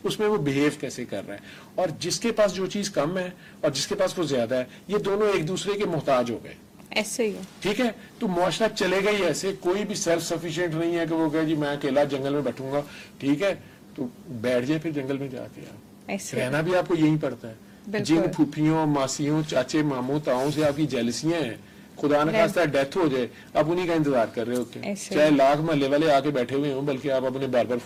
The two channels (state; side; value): identical; both; correlation 1.00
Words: اس میں وہ بہیو کیسے کر رہا ہے, اور جس کے پاس جو چیز کم ہے اور جس کے پاس وہ زیادہ ہے, یہ دونوں ایک دوسرے کے محتاج ہو گئے. ایسے ہی. ٹھیک ہے, تو معاشرہ چلے گا ہی ایسے. کوئی بھی سیلف سفیشینٹ نہیں ہے کہ وہ کہے جی میں اکیلا جنگل میں بیٹھوں گا. ٹھیک ہے, تو بیٹھ جائے پھر جنگل میں جا کے. آپ رہنا بھی آپ کو یہی پڑتا ہے. جن پھوپھیوں, ماسیوں, چاچے, ماموں, تاؤں سے آپ کی جیلسیاں ہیں, خدا نہ خواستہ ڈیتھ ہو جائے, آپ انہیں کا انتظار کر رہے ہوتے ہیں. چاہے لاکھ محلے والے آ کے بیٹھے ہوئے ہوں, بلکہ آپ اپنے بار بار